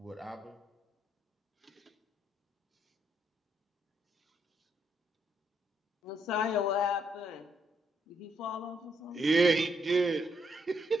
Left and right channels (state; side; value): normal; both; correlation 0.74